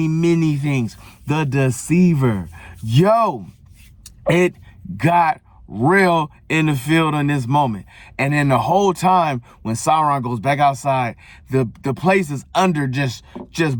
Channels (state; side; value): identical; both; correlation 1.00